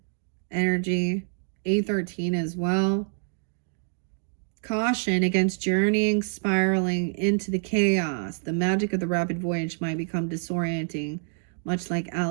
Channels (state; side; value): silent; left; digital silence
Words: energy. 813 as well. Caution against journeying, spiraling into the chaos. The magic of the rapid voyage might become disorienting, much like